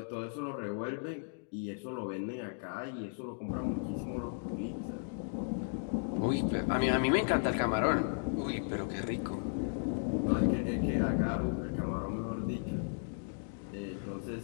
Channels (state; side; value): silent; right; digital silence